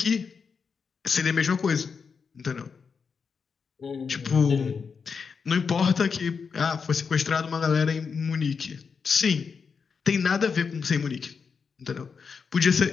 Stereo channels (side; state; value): right; quieter; 5.7 dB